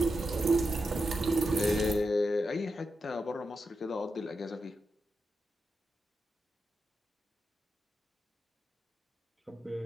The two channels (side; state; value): both; normal; correlation 0.87